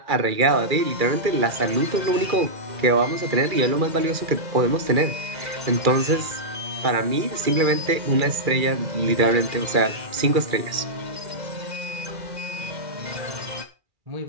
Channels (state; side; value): late; left; 2.3 ms